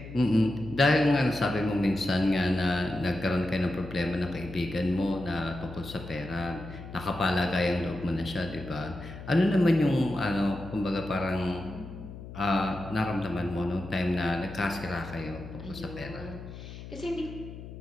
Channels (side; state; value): left; noise; hum, 12 dB below the sound